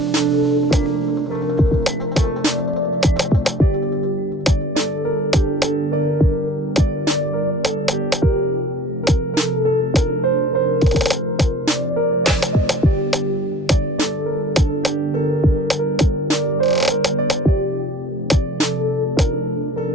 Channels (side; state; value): both; normal; correlation 0.48